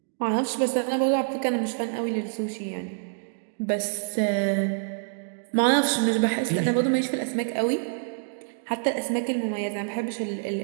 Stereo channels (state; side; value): silent; left; digital silence